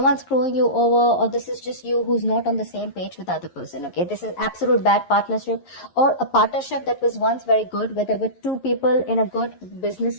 screwing you over, or this is just you who's not on the same page with the other person, okay? This is absolute bad partnership, or a partnership that was once very good, where there were two people in a good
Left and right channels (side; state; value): right; late; 11 ms